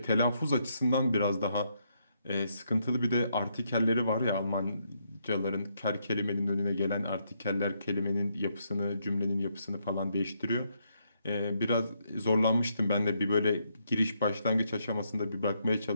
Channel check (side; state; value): both; inverted; correlation -0.76